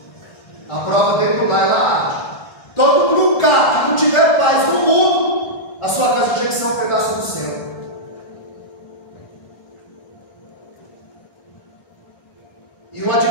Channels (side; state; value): right; late; 1.4 ms